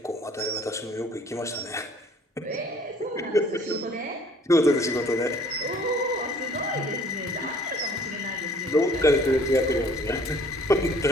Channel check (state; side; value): normal; both; correlation 0.55